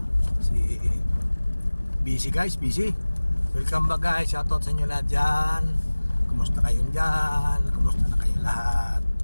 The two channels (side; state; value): both; inverted; correlation -1.00